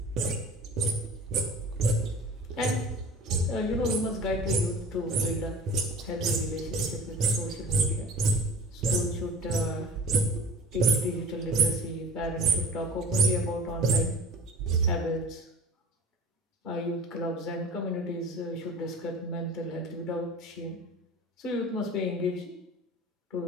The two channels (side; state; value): both; normal; correlation 0.41